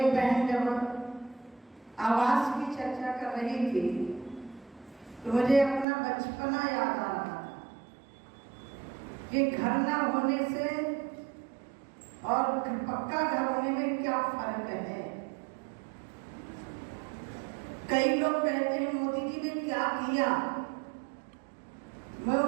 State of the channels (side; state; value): left; drops out; at 5.9 s